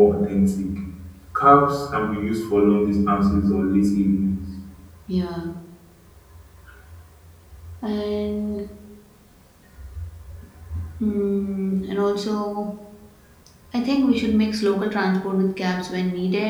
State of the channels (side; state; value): both; identical; correlation 1.00